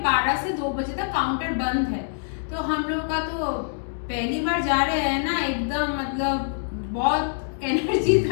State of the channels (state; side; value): silent; right; digital silence